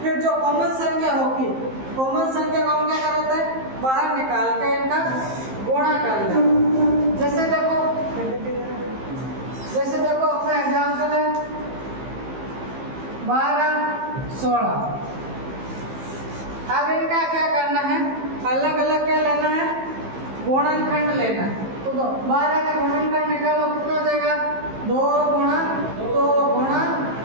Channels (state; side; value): late; left; 15 ms